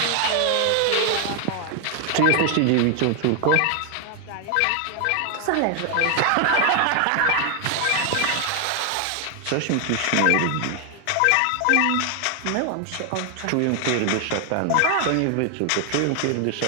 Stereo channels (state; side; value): different; both; correlation 0.00